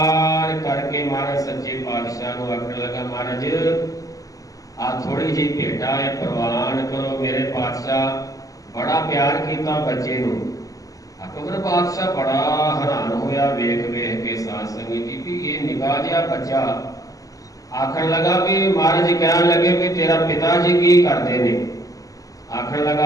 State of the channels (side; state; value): right; late; 0.17 ms